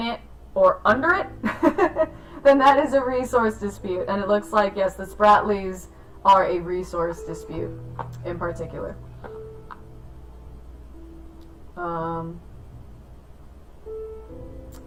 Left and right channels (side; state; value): both; identical; correlation 1.00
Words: it, or under it, then that is a resource dispute. And it looks like, yes, the Spratlys are a resource dispute in particular.